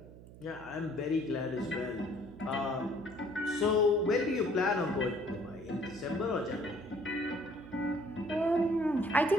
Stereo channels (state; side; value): noise; right; hum, 18 dB below the sound